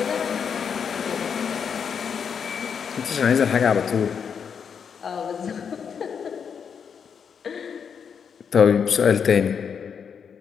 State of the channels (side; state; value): right; quieter; 6.9 dB